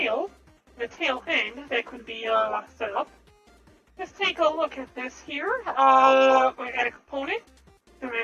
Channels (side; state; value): both; identical; correlation 1.00